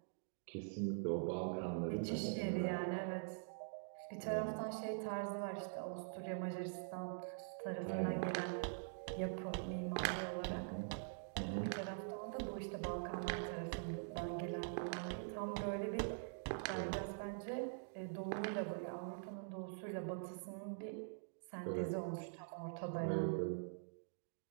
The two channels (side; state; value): left; silent; digital silence